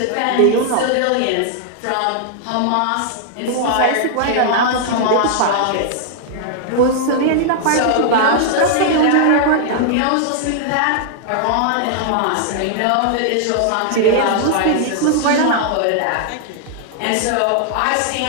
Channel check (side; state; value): both; different; correlation -0.01